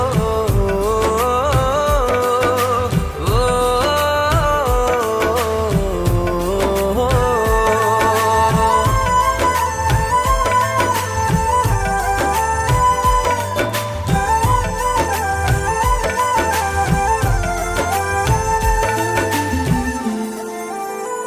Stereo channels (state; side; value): identical; both; correlation 1.00